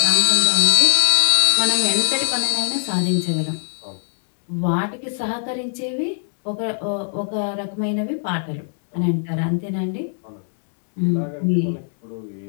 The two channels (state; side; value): silent; right; digital silence